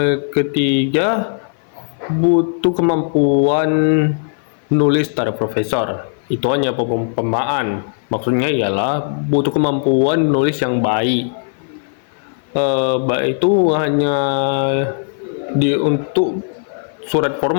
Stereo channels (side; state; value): right; silent; 56 dB below the other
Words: Ketiga, butuh kemampuan nulis secara profesor. Itu hanya perumpamaan. Maksudnya ialah butuh kemampuan nulis yang baik. Baik itu hanya untuk surat